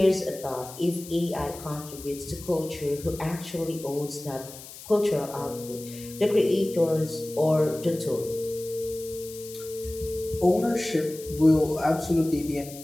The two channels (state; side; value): noise; left; hiss, 15 dB below the sound